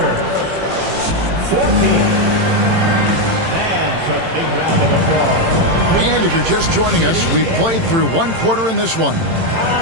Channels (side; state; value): left; late; 18 ms